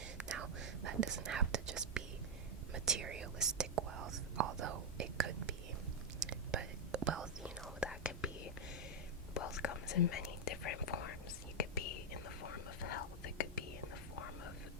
Now, that doesn't have to just be materialistic wealth, although it could be. But wealth, that could be, wealth comes in many different forms. You could be in the form of health. It could be in the form of,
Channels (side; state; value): both; normal; correlation 0.00